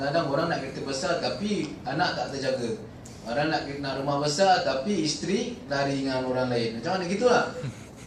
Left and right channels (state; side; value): identical; both; correlation 1.00